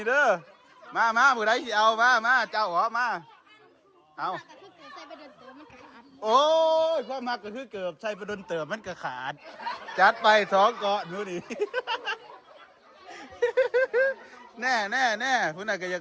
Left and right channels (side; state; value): both; identical; correlation 1.00